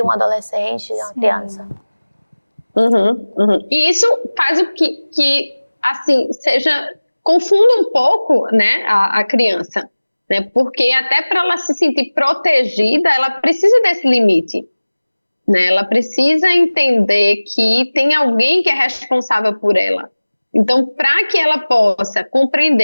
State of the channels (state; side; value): inverted; both; correlation -1.00